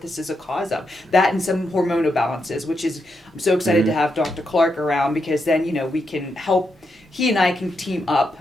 this is a cause of. That and some hormonal balances, which is, I'm so excited to have Dr. Clark around because then, you know, we can help. He and I can team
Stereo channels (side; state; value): both; normal; correlation 0.83